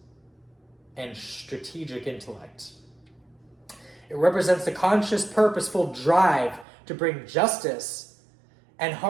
and strategic intellect. It represents the conscious, purposeful drive to bring justice and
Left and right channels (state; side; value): drops out; left; at 6.7 s